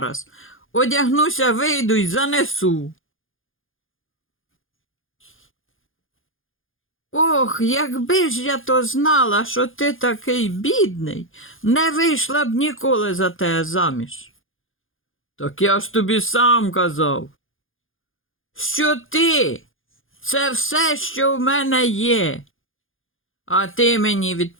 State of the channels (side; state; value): right; late; 0.59 ms